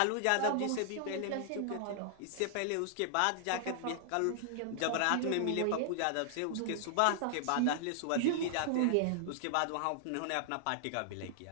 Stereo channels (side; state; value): both; different; correlation -0.01